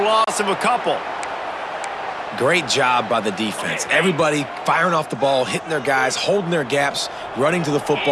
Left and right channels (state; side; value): identical; both; correlation 1.00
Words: of a couple. Great job by the defense. Everybody firing off the ball, hitting their guys, holding their gaps, running to the